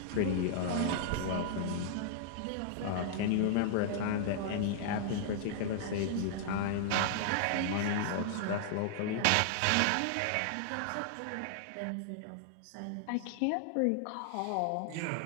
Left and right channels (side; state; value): both; different; correlation -0.01